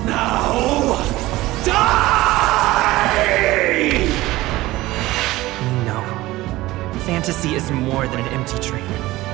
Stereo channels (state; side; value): quieter; left; 18.0 dB